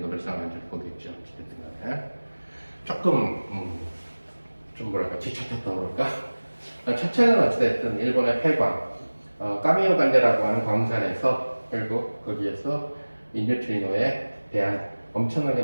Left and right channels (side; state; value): both; inverted; correlation -1.00